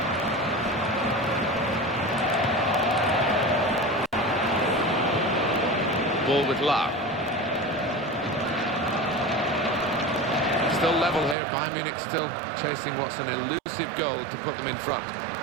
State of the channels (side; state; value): left; drops out; at 11.4 s